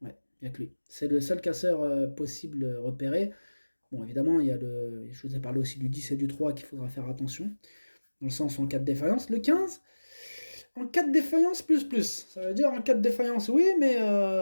Ouais, il n'y a que lui. C'est le seul casseur possible repéré. Bon, évidemment, je vous ai parlé aussi du 10 et du 3 qu'il faudra faire attention, dans le sens en cas de défaillance. Le 15, en cas de défaillance, plus. Ça veut dire en cas de défaillance, oui, mais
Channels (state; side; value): inverted; both; correlation -1.00